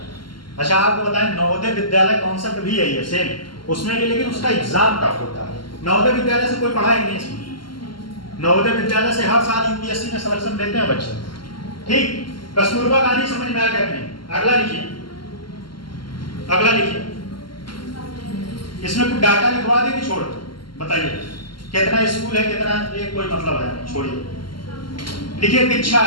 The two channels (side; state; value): right; late; 0.72 ms